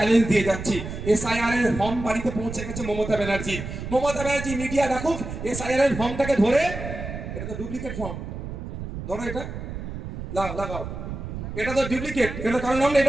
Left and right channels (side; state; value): right; noise; rumble, 7 dB below the sound